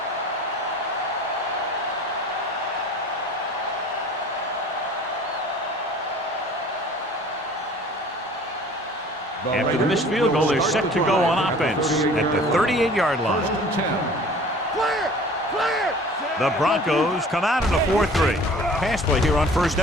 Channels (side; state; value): both; normal; correlation 0.47